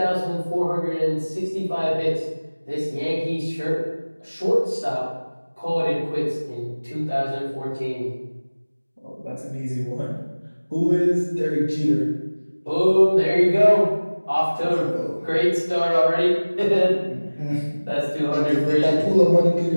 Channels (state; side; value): inverted; both; correlation -1.00